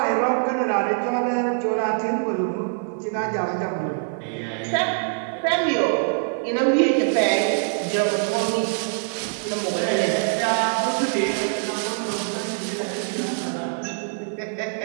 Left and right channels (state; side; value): silent; left; 63 dB below the other